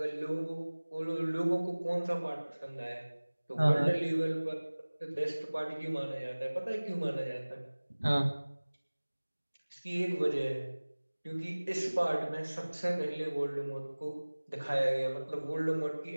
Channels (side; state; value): both; inverted; correlation -1.00